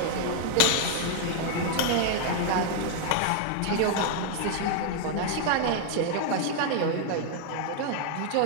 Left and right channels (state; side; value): different; both; correlation 0.00